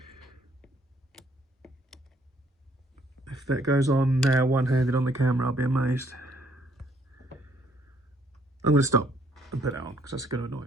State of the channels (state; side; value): normal; both; correlation 0.66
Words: If that goes on now one-handed on the camera, I'll be amazed. I'm going to stop and put that on because that's going to annoy